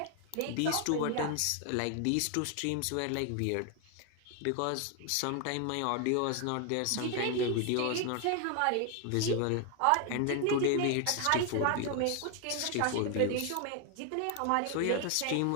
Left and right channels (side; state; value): both; different; correlation 0.00